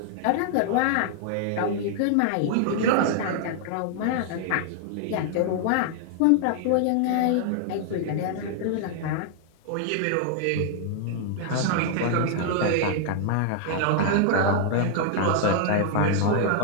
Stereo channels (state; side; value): different; both; correlation -0.01